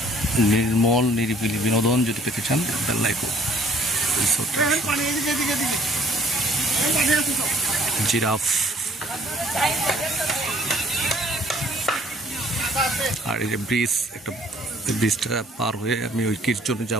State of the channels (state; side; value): normal; both; correlation 0.59